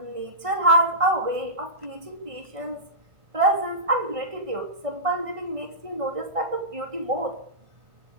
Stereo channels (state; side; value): late; left; 1.6 ms